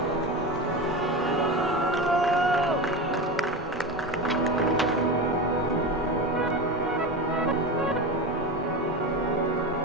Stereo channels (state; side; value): normal; both; correlation 0.23